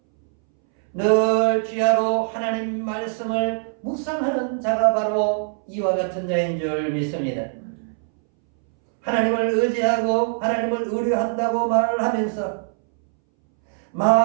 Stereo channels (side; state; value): left; silent; 63 dB below the other